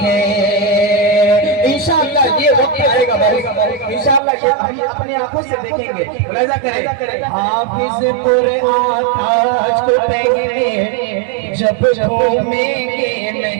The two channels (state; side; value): drops out; left; at 4.2 s